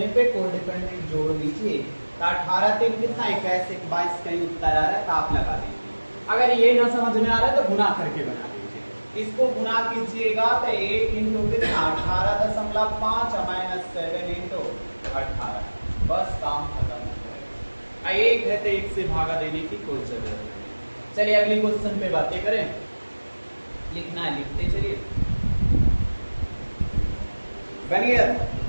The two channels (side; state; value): both; inverted; correlation -1.00